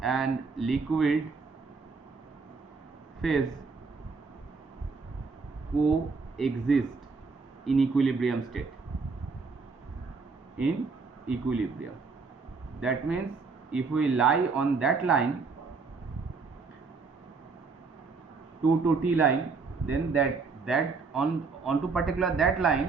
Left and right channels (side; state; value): left; quieter; 4.6 dB